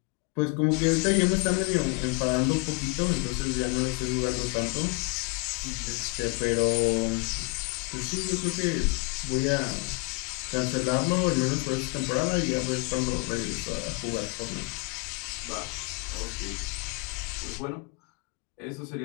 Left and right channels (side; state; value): right; quieter; 30.6 dB